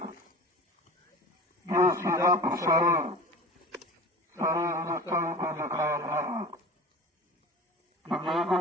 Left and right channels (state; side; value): normal; both; correlation 0.37